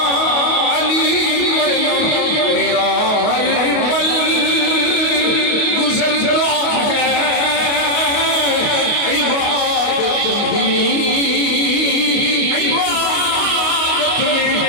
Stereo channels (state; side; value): late; right; 28 ms